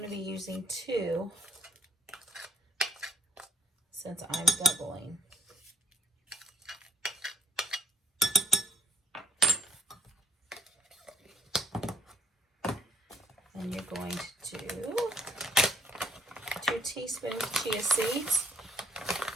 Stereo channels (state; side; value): normal; both; correlation 0.64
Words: to be using 2 since I'm doubling. And you're going to do 2 teaspoons chia seeds.